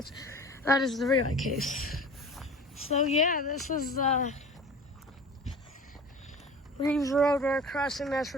That is the relay case. So yeah, this is Reeves Road crossing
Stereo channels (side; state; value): both; normal; correlation 0.39